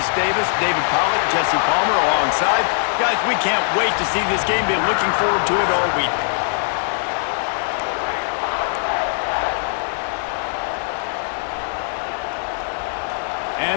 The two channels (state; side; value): silent; right; digital silence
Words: Davis, David Pollack, Jesse Palmer alongside. Guys, we can't wait to see this game. Been looking forward to it all week.